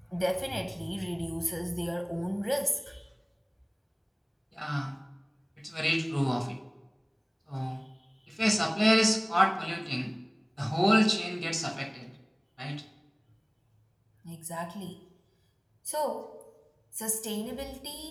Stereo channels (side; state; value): both; identical; correlation 1.00